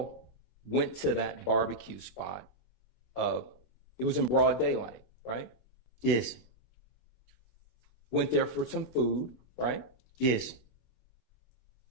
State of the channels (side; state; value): right; late; 26 ms